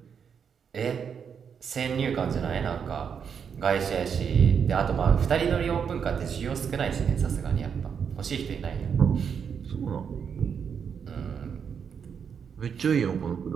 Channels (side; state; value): left; quieter; 7.0 dB